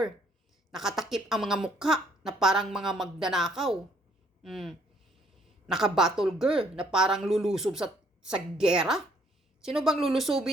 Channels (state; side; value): normal; both; correlation 0.65